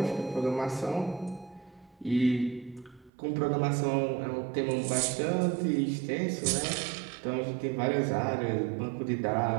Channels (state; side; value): drops out; left; at 3.1 s